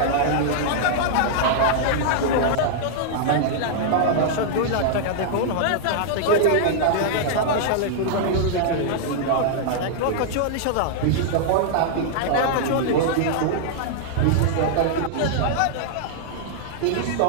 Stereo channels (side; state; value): both; different; correlation -0.01